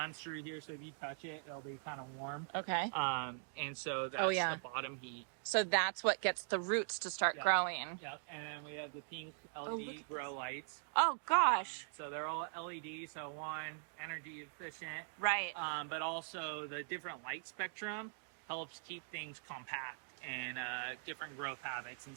through here. So if you touch it, it'll be kind of warm. Okay. And so that's the bottom heat. So that's what gets the roots to start growing. Yep. And then we have the pink LED grow lights. Oh gosh. So they're all LED. So one, energy efficient. Right. But also the different light spectrum helps keep things compact and different growth habits and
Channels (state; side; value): silent; left; digital silence